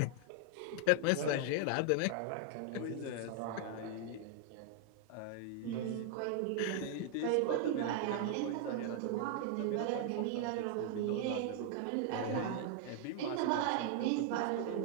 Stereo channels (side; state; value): both; different; correlation 0.00